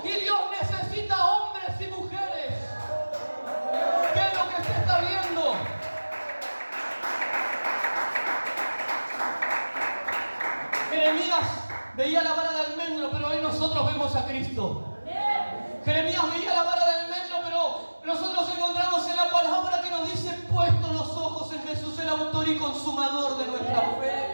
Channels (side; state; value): both; inverted; correlation -1.00